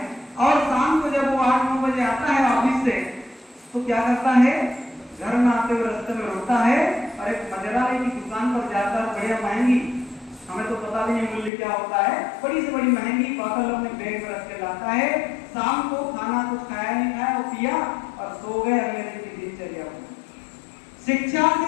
और शाम को जब वो 8-9 बजे आता है ऑफिस से, तो क्या करता है, घर में आते हुए रास्ते में रोता है और एक मदिरालय की दुकान पर जाता है, बढ़िया महंगी, हमें तो पता भी नहीं मूल्य क्या होता है, बड़ी से बड़ी महंगी बोतल अपने बैग में रख के लाता है। शाम को खाना कुछ खाया नहीं खाया, वो पिया और सो गए। अगले दिन की दिनचर्या। शिक्षा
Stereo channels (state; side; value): drops out; right; at 11.5 s